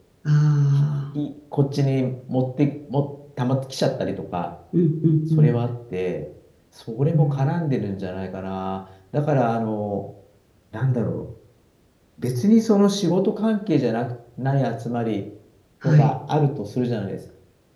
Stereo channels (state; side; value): identical; both; correlation 1.00